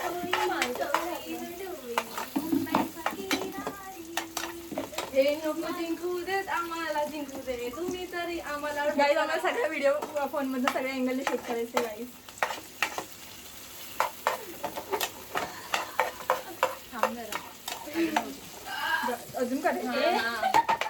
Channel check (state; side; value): identical; both; correlation 1.00